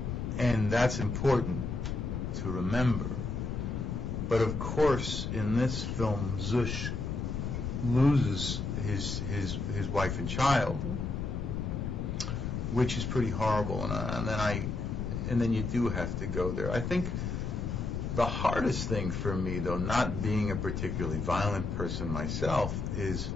And that's important to remember. But of course, in this film, Zush loses his wife and child, which is pretty horrible. And then you do have to go there. I think the hardest thing for me, though, not being a particularly violent person myself, is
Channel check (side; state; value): left; noise; rumble, 3 dB below the sound